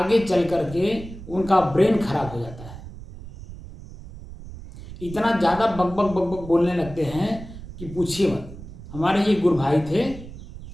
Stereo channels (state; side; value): noise; right; rumble, 14 dB below the sound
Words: चल करके उनका ब्रेन खराब हो जाता है। इतना ज़्यादा बक बक बक बक बोलने लगते हैं कि पूछिए मत। हमारे ये गुरु भाई थे